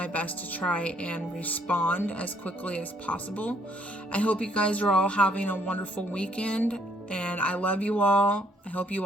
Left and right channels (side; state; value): both; normal; correlation 0.66